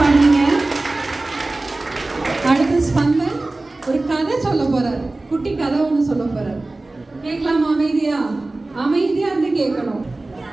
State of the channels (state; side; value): quieter; left; 3.0 dB